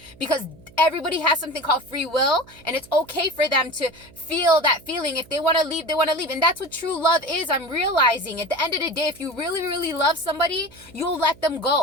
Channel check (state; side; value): noise; right; hum, 24 dB below the sound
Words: Because everybody has something called free will. And it's okay for them to feel that feeling. If they want to leave, they want to leave. And that's what true love is. I'm realizing at the end of the day, if you really, really love somebody, you'll let them